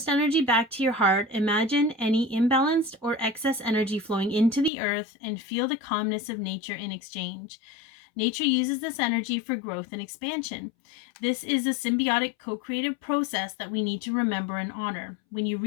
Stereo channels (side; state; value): right; drops out; at 4.7 s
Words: energy back to your heart. Imagine any imbalanced or excess energy flowing into the earth and feel the calmness of nature in exchange. Nature uses this energy for growth and expansion. This is a symbiotic co-creative process that we need to remember and honor. When you